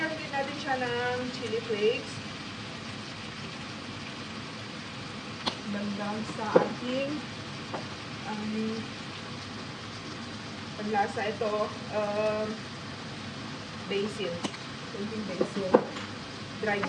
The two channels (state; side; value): identical; both; correlation 1.00